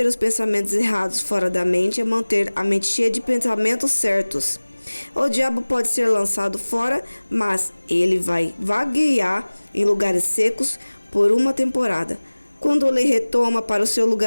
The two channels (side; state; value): both; inverted; correlation -1.00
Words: os pensamentos errados fora da mente é manter a mente cheia de pensamentos certos. O diabo pode ser lançado fora, mas ele vai vaguear em lugares secos por uma temporada. Quando ele retoma para o seu